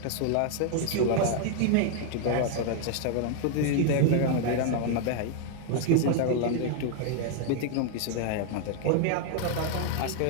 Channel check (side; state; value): both; different; correlation 0.00